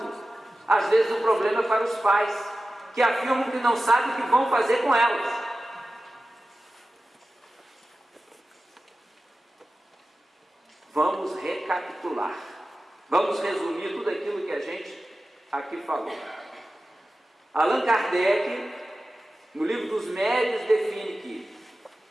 às vezes o problema é para os pais, que afirmam que não sabem o que vão fazer com elas. Vamos recapitular, vamos resumir tudo aquilo que a gente aqui falou. Allan Kardec, no livro dos Médiuns, define que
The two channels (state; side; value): normal; both; correlation 0.94